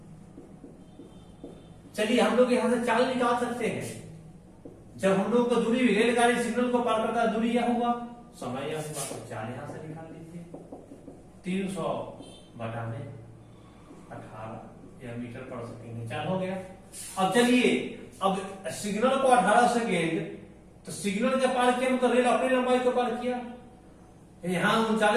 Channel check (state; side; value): identical; both; correlation 1.00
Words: चलिए हम लोग यहां से चाल निकाल सकते हैं। जब हम लोग को दूरी रेलगाड़ी सिग्नल को पार करता है, दूरी यह हुआ, समय यह हुआ, तो चाल यहां से निकाल लीजिए। 300 बटा में 18 या मीटर पर सेकेंड चाल हो गया। अब चलिए, अब सिग्नल को 18 सेकेंड, तो सिग्नल के पार किया मतलब रेल अपनी लंबाई को पार किया। यहां